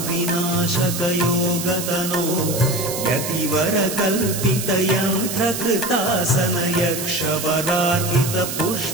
विनाशक योगतनो यतिवर कल्पित यंत्र कृतासन यक्ष वरार्पित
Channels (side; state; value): right; noise; hiss, 5 dB below the sound